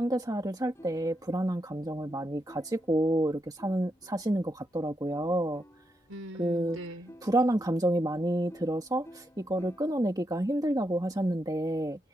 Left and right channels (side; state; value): both; normal; correlation 0.83